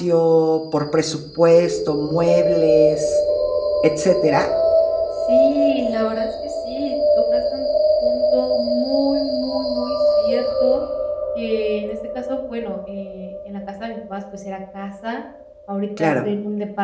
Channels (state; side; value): identical; both; correlation 1.00